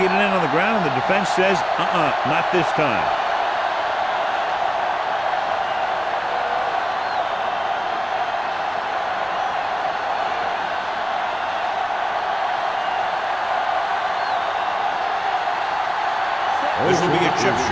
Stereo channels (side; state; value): both; identical; correlation 1.00